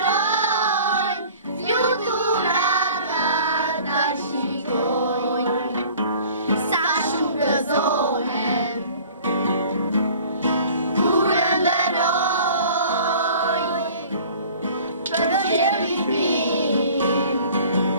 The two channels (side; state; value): both; inverted; correlation -0.47